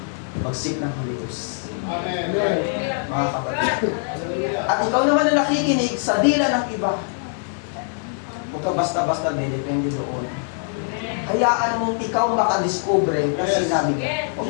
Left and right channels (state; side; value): silent; right; digital silence